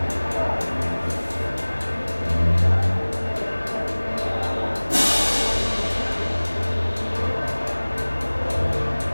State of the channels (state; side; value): inverted; both; correlation -1.00